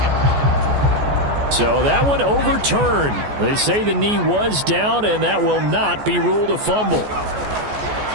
So that one overturned. They say the knee was down, and that will not be ruled a fumble.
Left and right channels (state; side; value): late; left; 14 ms